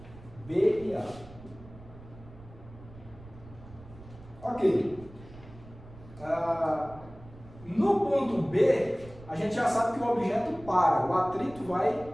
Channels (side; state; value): right; noise; rumble, 19 dB below the sound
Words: B e A. Ok. No ponto B, a gente já sabe que o objeto para. O atrito vai